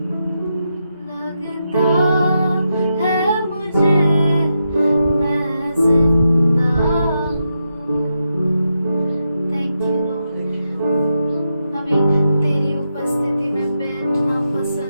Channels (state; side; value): inverted; both; correlation -0.85